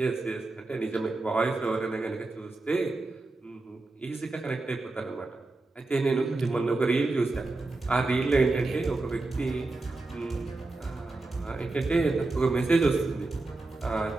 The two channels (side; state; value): left; quieter; 3.2 dB